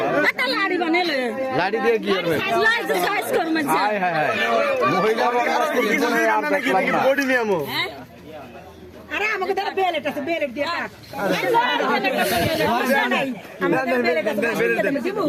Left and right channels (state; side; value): identical; both; correlation 1.00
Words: লাড়ি দিয়ে কি করবে আরে আমাকে দাও বেলেট আছে বেলেট দিয়ে কাট